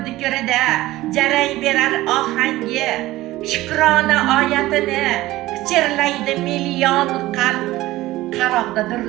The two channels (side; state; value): left; quieter; 17.2 dB